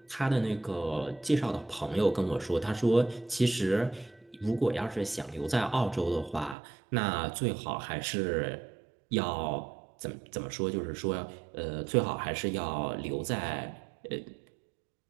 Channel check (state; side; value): drops out; left; at 6.6 s